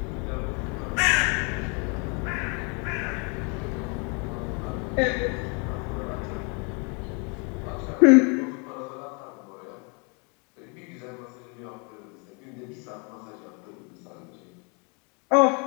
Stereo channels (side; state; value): right; quieter; 34.0 dB